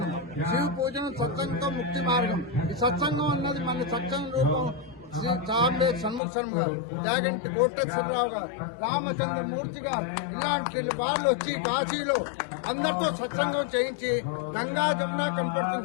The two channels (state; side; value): drops out; right; at 6.2 s